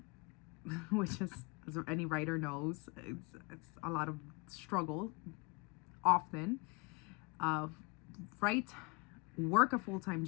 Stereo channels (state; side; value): quieter; right; 27.7 dB